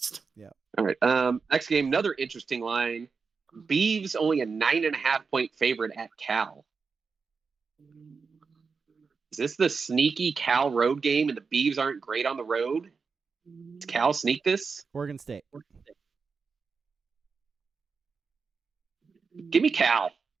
Yeah. All right. Next game, another interesting line. Beavs only a 9.5 point favorite at Cal. Is this the sneaky Cal road game and the Beavs aren't great on the road? Does Cal sneak this? Oregon State. Give me Cal.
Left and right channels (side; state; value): left; quieter; 5.1 dB